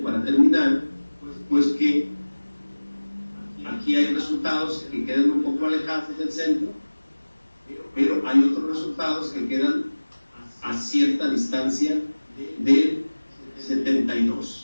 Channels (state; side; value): inverted; both; correlation -1.00